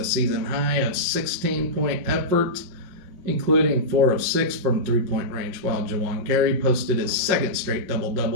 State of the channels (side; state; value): left; late; 5.6 ms